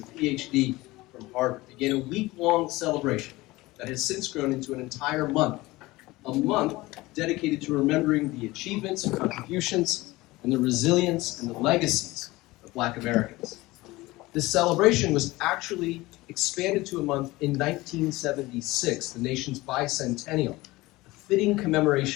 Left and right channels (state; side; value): quieter; right; 20.0 dB